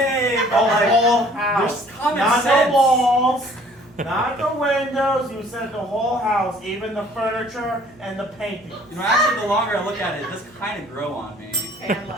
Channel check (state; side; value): noise; right; hum, 28 dB below the sound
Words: The but like, whole house. there's common Not sense. the walls. Not the windows. You said the whole house, even the furniture and the painting. You know, actually, the longer I look at it, it does kind of grow on me. And